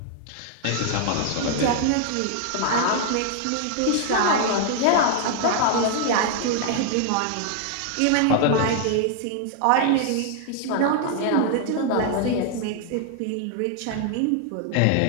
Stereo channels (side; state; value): both; different; correlation 0.00